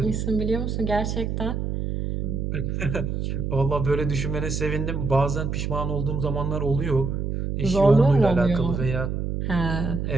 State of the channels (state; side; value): noise; right; hum, 2 dB below the sound